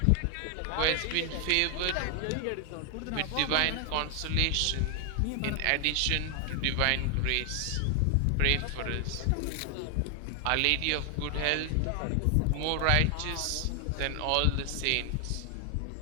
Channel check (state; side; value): different; both; correlation 0.00